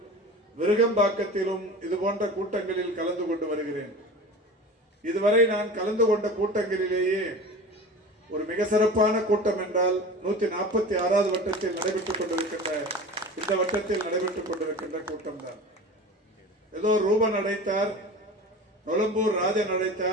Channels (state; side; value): normal; both; correlation 0.35